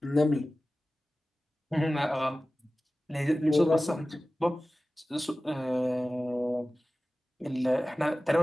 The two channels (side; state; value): both; normal; correlation 0.96